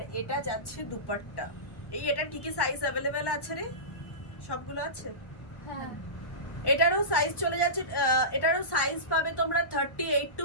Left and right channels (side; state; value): right; late; 1.1 ms